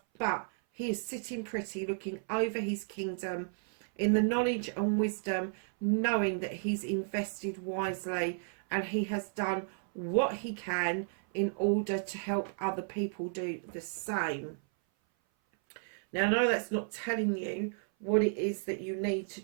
but he is sitting pretty, looking over his kingdom in the knowledge and wisdom, knowing that he's invested wisely and he has done what he can in order to help other people do the same. Now, I know that's not telling you what it is that you need to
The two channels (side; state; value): left; silent; 56 dB below the other